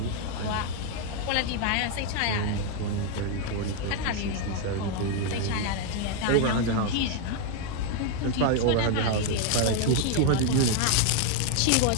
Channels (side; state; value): both; different; correlation 0.01